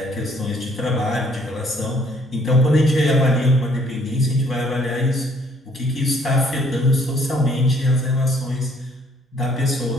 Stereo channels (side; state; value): both; normal; correlation 0.63